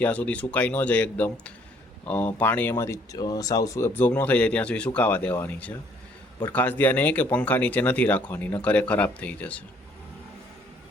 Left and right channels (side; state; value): both; normal; correlation 0.63